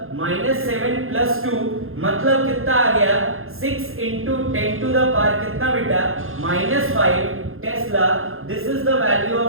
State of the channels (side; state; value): left; late; 0.61 ms